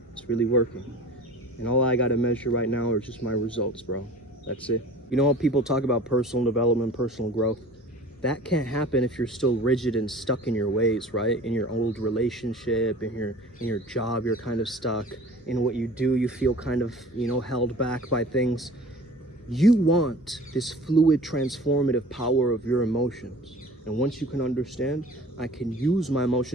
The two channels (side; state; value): both; normal; correlation 0.43